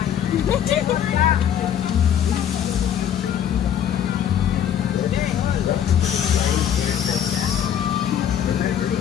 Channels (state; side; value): quieter; right; 9.4 dB